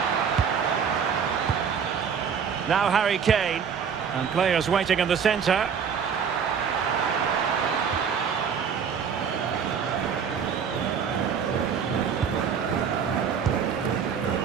Now Harry Kane. And players waiting in the centre.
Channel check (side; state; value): left; quieter; 7.0 dB